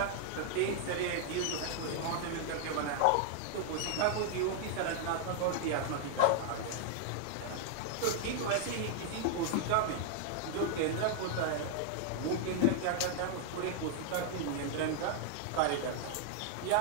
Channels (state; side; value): different; both; correlation 0.00